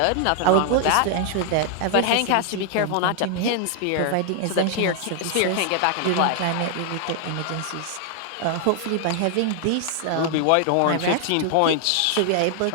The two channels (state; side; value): different; both; correlation 0.00